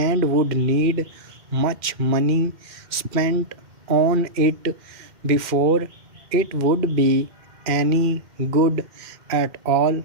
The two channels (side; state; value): left; late; 2.1 ms